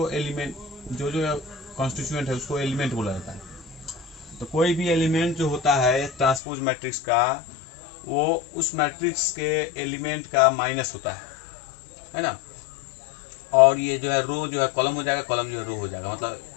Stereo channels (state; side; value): drops out; right; at 6.4 s